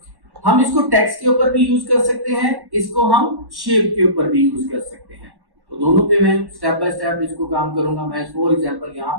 हम इसको टेक्स्ट के ऊपर भी यूज कर सकते हैं, इसको हम शेप के ऊपर भी यूज कर सकते हैं। तो दोनों पे मैं स्टेप बाय स्टेप इसको काम करूंगा। मैं फॉर एग्जांपल यहाँ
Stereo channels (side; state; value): left; late; 1.1 ms